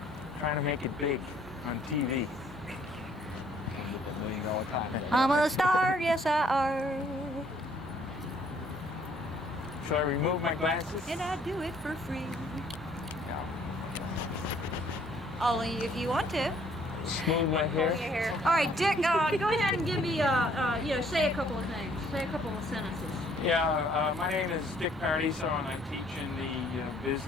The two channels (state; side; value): normal; both; correlation 0.62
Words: Trying to make it big on TV. $1 million contract. I'm a star, yes I are. Shall I remove my glasses? And I do it for free. Yeah. Only if you want to. Smooth my hair. All right, Dick, go ahead and give me, say a couple of things. Say a couple of sentences. Yeah, my name is Dick Paradiso, and I teach in the